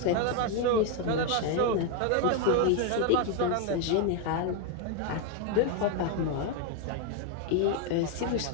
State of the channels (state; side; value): different; both; correlation 0.01